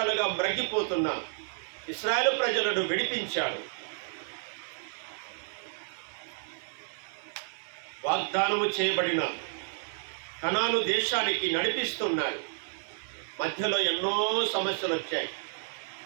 మ్రగ్గిపోతున్న ఇశ్రాయేలు ప్రజలను విడిపించాడు. వాగ్దానము చేయబడిన కనాను దేశానికి నడిపిస్తున్నాడు. మధ్యలో ఎన్నో సమస్యలు వచ్చాయి.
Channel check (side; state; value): left; silent; 57 dB below the other